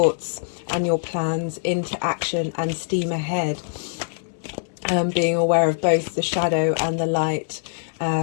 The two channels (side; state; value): right; silent; digital silence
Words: and your plans into action and steam ahead, being aware of both the shadow and the light.